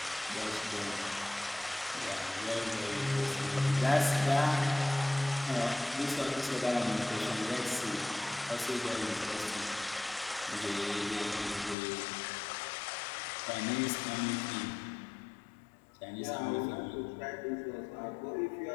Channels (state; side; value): drops out; right; at 11.8 s